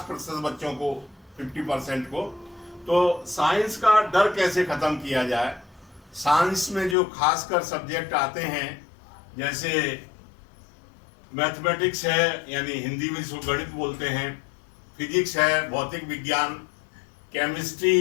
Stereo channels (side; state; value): right; drops out; at 7.0 s